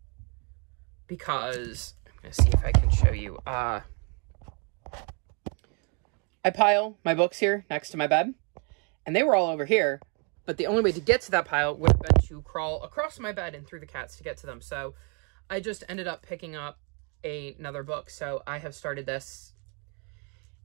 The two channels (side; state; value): left; quieter; 35.4 dB